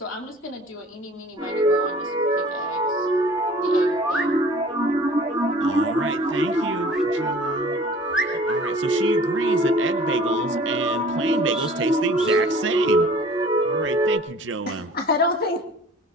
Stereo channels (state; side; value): normal; both; correlation 0.49